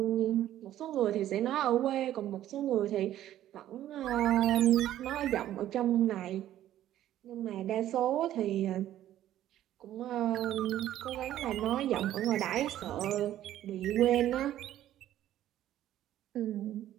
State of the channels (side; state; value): left; quieter; 12.6 dB